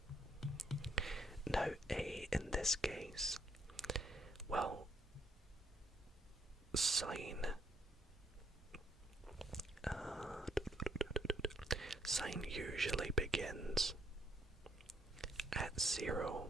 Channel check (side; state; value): both; normal; correlation 0.71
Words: Now a in this case, well, sine usually begins at 0,